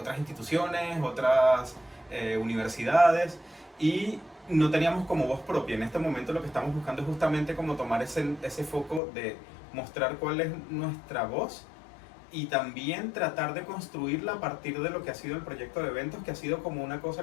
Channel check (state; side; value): drops out; right; at 9.0 s